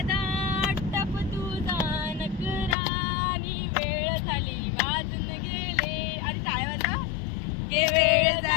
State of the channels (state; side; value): drops out; right; at 2.8 s